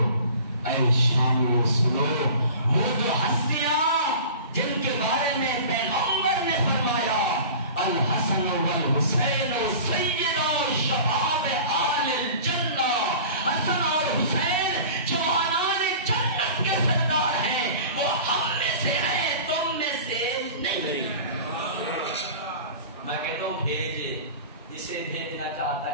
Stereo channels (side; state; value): both; inverted; correlation -0.40